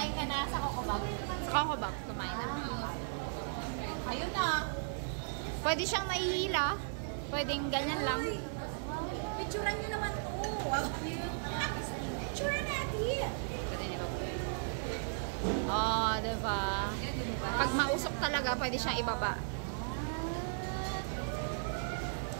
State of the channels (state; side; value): silent; left; digital silence